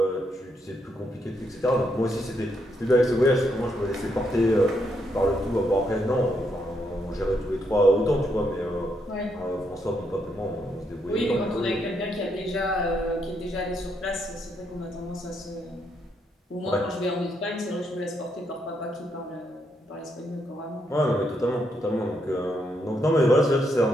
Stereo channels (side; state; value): both; normal; correlation 0.77